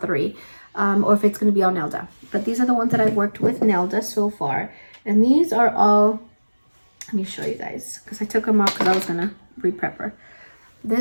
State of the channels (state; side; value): inverted; both; correlation -1.00